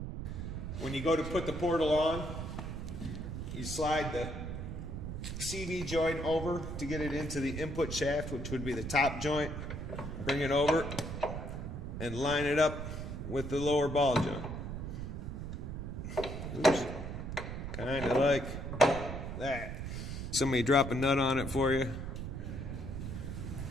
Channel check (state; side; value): noise; right; rumble, 6 dB below the sound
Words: When you go to put the portal on, you slide the CV joint over to get it into the input shaft, which would be the top joint. Bring it over and line it up with the lower ball joint. Oops. Kind of like that. Somebody drop a nut on it for you.